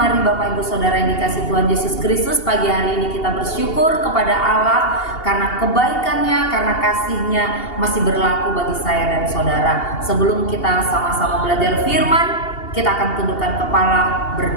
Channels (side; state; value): right; late; 2.8 ms